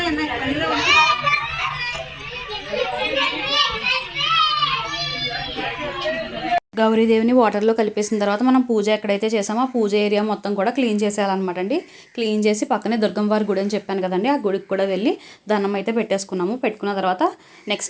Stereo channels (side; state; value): both; identical; correlation 1.00